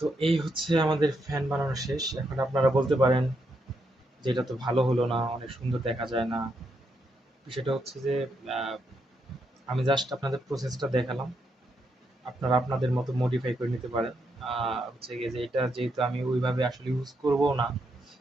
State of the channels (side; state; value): both; normal; correlation 0.80